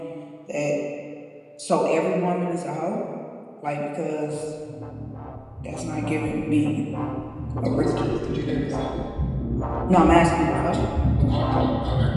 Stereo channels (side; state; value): both; identical; correlation 1.00